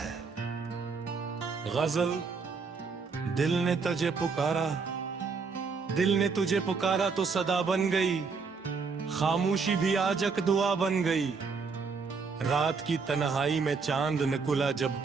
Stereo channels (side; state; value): left; quieter; 5.0 dB